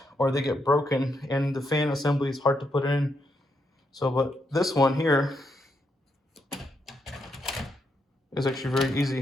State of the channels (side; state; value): both; normal; correlation 0.80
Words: or they get broken, and the fan assembly is hard to put in. So, but this one here is actually very